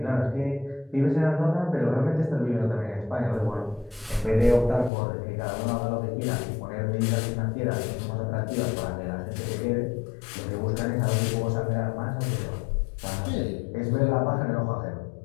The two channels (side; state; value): right; drops out; at 4.9 s